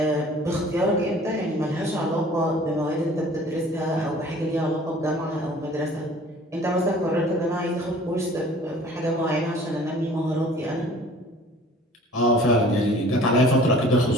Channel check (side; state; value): both; normal; correlation 0.49